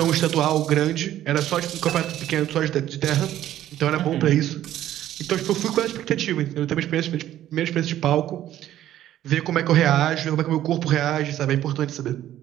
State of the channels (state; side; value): quieter; left; 12.6 dB